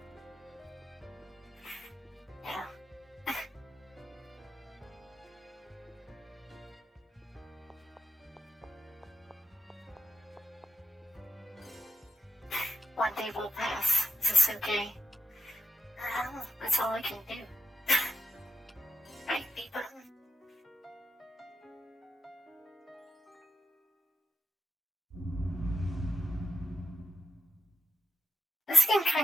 Yeah. One day will pass. Is this okay? That's all I can do. Right, B button? This game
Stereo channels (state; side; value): normal; both; correlation 0.90